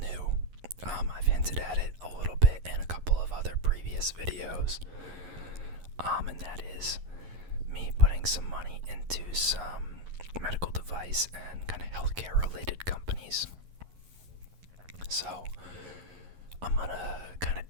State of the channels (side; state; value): left; late; 11 ms